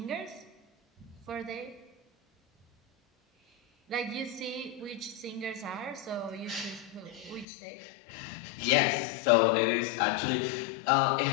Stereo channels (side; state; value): right; drops out; at 7.5 s